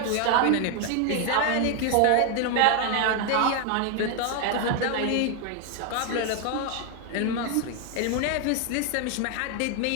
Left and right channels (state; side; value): different; both; correlation 0.01